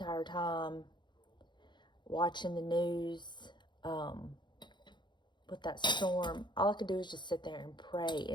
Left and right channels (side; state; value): right; late; 0.22 ms